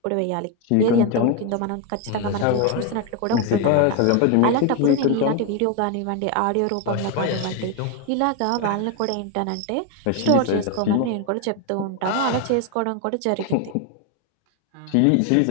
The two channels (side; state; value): both; different; correlation 0.01